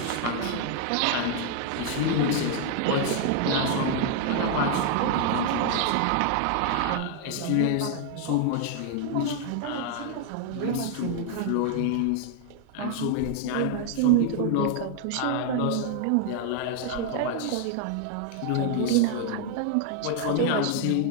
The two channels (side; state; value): both; different; correlation 0.00